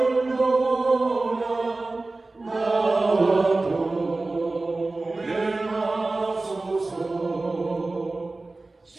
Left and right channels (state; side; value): quieter; left; 3.2 dB